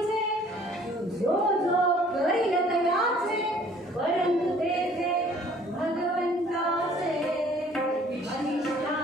जो जो करील तयाचे, परंतु तेथे भगवंताचे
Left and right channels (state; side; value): normal; both; correlation 0.55